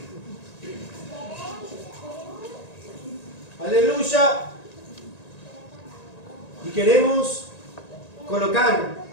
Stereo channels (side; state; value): right; late; 1.9 ms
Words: Aleluya. Y queremos colocar